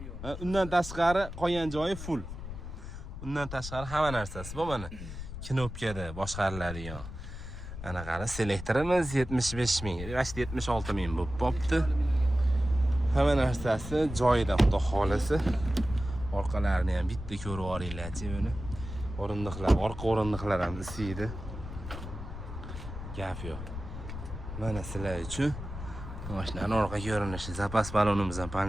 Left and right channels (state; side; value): noise; left; rumble, 9 dB below the sound